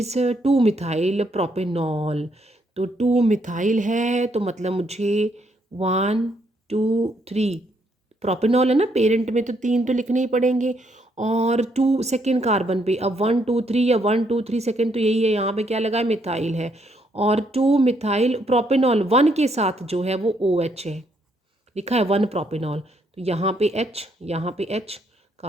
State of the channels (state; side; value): normal; both; correlation 0.73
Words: 2 मिथाइल प्रोपेनॉल. तो 2 मिथाइल है तो मतलब मुझे 1 2 3 प्रोपेनॉल है ना, पेरेंट में तो 3 तो लिखने ही पड़ेंगे. और 2 सेकेंड कार्बन पे अब 1 2 3 या 1 2 3 सेकेंड तो यही है. यहाँ पे क्या लगा है? मिथाइल है. और 2 मिथाइल प्रोपेनॉल 1 के साथ जो है वो OH है, लिखा है 1 प्रोपेनॉल. तो यहाँ पे H, यहाँ पे H.